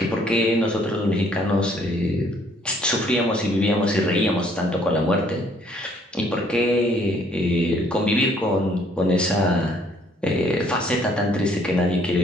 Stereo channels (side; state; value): both; normal; correlation 0.63